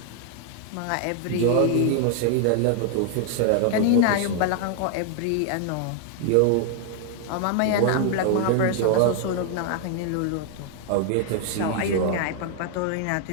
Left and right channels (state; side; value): different; both; correlation 0.00